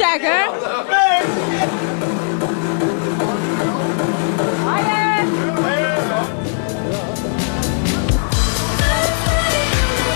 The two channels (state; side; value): silent; right; 68 dB below the other